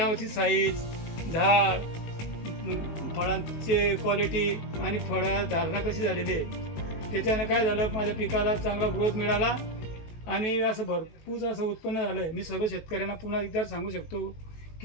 साईज, झाड, फळांची क्वालिटी आणि फळा धारणा कशी झालेली आहे। त्याच्यानं काय झालं, माझ्या पिकाला चांगला ग्रोथ मिळाला आणि असं भरपूर असं उत्पन्न झालं आहे। मी सर्व शेतकऱ्यांना पुन्हा एकदा सांगू शकतो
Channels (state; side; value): late; right; 19 ms